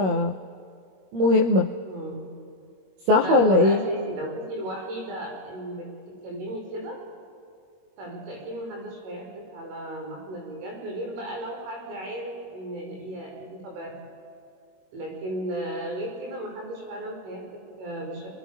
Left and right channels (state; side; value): late; left; 22 ms